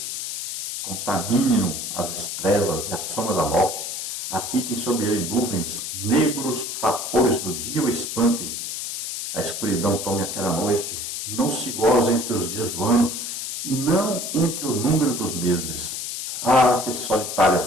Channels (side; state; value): left; noise; hiss, 5 dB below the sound